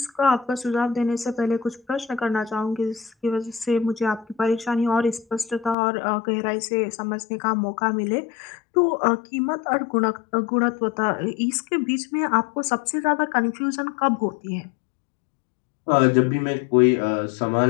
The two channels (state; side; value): drops out; right; at 5.8 s